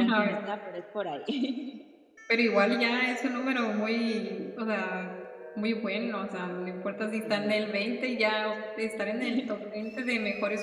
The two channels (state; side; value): identical; both; correlation 1.00